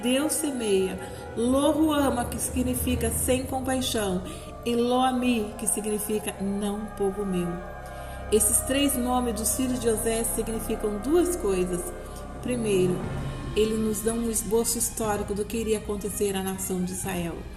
semeia, Lo-ruama, que significa sem compaixão, e Lo-ami, que significa não povo meu. Esses 3 nomes dos filhos de Oséias significam 2 coisas. Primeiro, ele nos dá um esboço histórico do que iria acontecer à nação de Israel.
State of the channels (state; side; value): identical; both; correlation 1.00